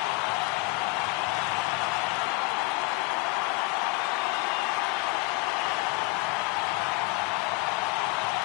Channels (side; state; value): right; quieter; 23.3 dB